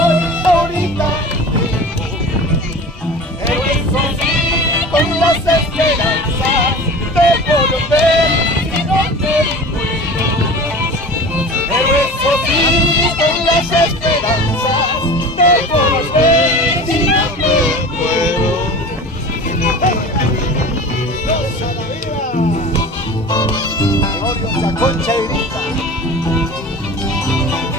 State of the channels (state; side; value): normal; both; correlation 0.37